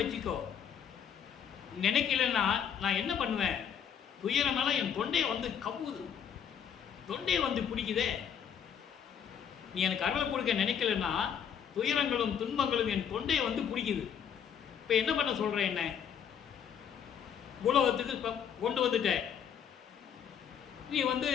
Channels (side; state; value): right; quieter; 8.1 dB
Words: வச்சுக்கோ. நினைக்கலன்னா நான் என்ன பண்ணுவேன்? துயரமெல்லாம் என் தொண்டையை வந்து கவுது, தொண்டையை வந்து பிடிக்குதே. நீ எனக்கு அருளை கொடுக்க நினைக்கலன்னா துயரங்களும் துன்பங்களும் என் தொண்டையை வந்து பிடிக்குது. இப்போ என்ன பண்ண சொல்கிறேன்? என்ன உலகத்துக்கு இப்போ கொண்டு வந்துட்ட. நீ வந்து